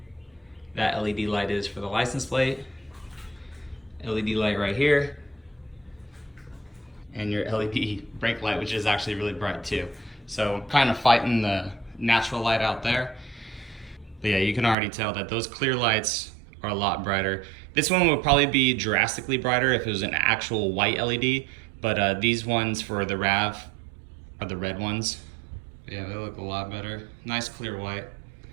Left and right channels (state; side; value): drops out; left; at 14.8 s